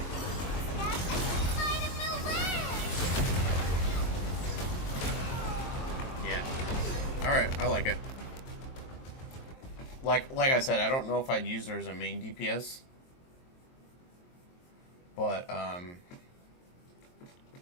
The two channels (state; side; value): late; right; 23 ms